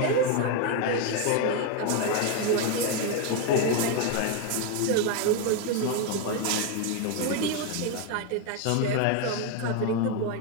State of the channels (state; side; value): different; both; correlation 0.01